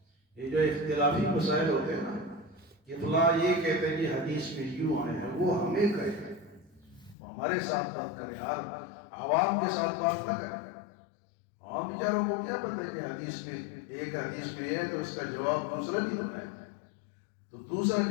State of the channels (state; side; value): drops out; right; at 7.2 s